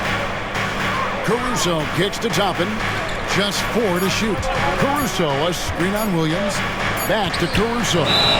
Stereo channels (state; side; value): identical; both; correlation 1.00